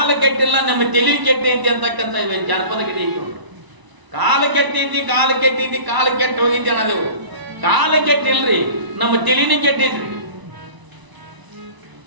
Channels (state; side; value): late; left; 1.0 ms